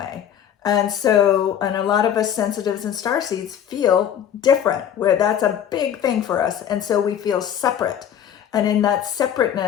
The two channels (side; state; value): right; quieter; 9.5 dB